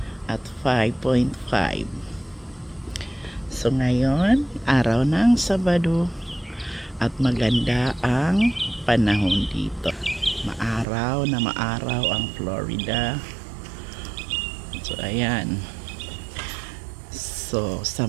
at 5.5. So ngayon, araw ng Sabado at maganda ang panahon dito. Maaraw na maaraw ang Florida. So ayan. So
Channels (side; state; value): left; drops out; at 10.9 s